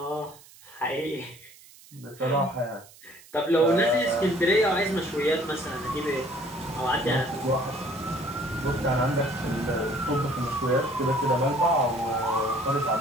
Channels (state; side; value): noise; right; hiss, 23 dB below the sound